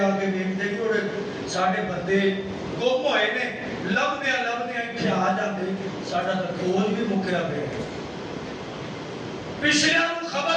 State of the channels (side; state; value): both; identical; correlation 1.00